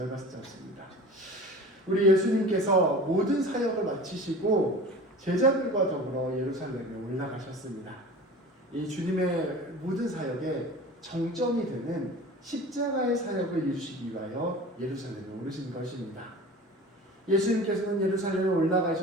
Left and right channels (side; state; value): both; normal; correlation 0.38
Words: 짧습니다. 우리 예수님께서 모든 사역을 마치시고 제자들과 더불어 예루살렘에 올라가셨습니다. 이 주님의 모든 사역의 정점이 되는 십자가의 사역을 이루시기 위하여 예루살렘에 오르신 것입니다. 예수님께서는 예루살렘에